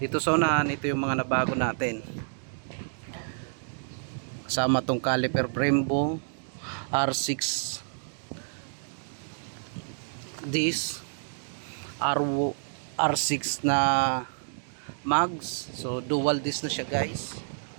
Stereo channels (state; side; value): silent; left; digital silence